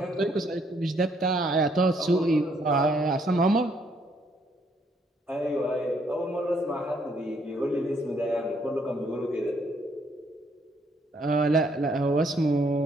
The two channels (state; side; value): normal; both; correlation 0.69